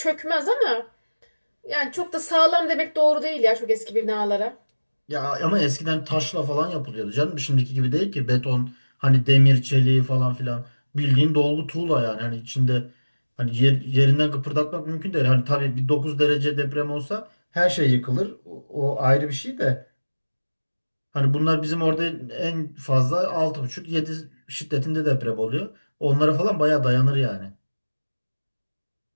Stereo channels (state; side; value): inverted; both; correlation -1.00